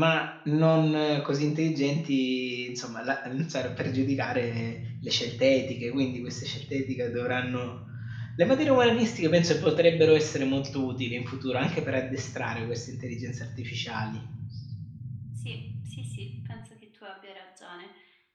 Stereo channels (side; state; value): both; identical; correlation 1.00